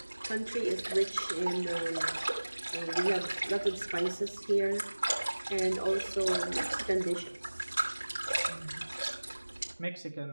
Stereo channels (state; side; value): inverted; both; correlation -1.00